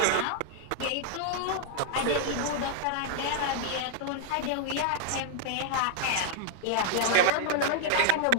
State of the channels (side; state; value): both; different; correlation -0.01